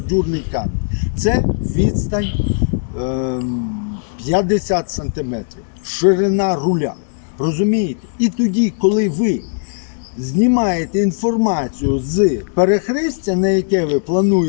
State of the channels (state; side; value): silent; right; digital silence